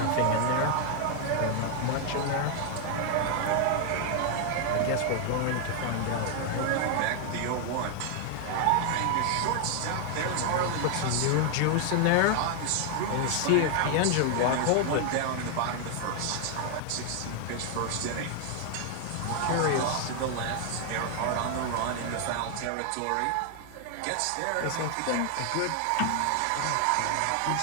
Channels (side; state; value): both; different; correlation 0.00